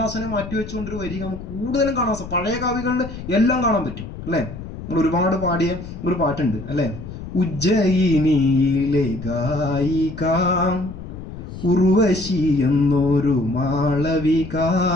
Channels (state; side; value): noise; left; rumble, 11 dB below the sound